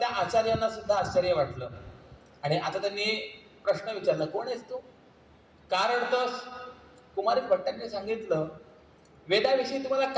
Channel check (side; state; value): both; identical; correlation 1.00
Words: आचार्यांना सुद्धा आश्चर्य वाटलं आणि आता त्यांनी प्रश्न विचारला, कोण आहेस तू, का रडतोस? कुमारिल भट्टांनी सांगितलं, वेदाविषयी तुम्हाला